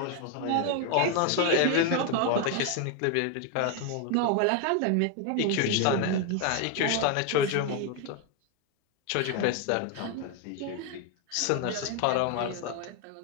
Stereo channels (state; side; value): different; both; correlation 0.01